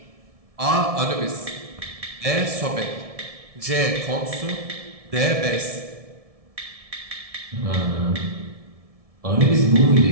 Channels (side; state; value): left; late; 1.7 ms